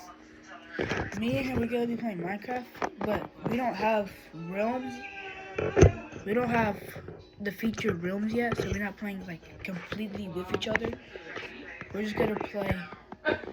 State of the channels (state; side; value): identical; both; correlation 1.00